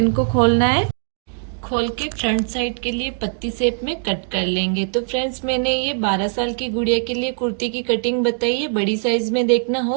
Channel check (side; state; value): left; silent; digital silence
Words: को खोलना है। खोल के फ्रंट साइड के लिए पत्ती शेप में कट कर लेंगे। तो फ्रेंड्स, मैंने ये 12 साल की गुड़िया के लिए कुर्ती की कटिंग बताई है। बड़ी साइज में देखना